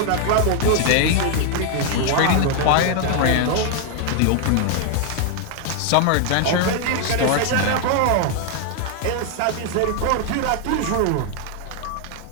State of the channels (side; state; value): both; different; correlation 0.00